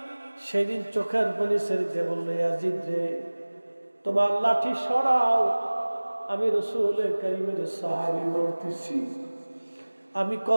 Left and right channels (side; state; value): both; inverted; correlation -1.00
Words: সেদিন চোখের পানি ছেড়ে বলল, ইয়াজিদ রে, তোমার লাঠি সরাও। আমি রাসূল কারীমের সাহাবী বলতেছি, আমি